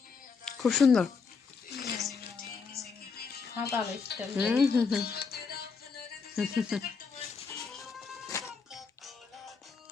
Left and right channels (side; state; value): right; quieter; 5.2 dB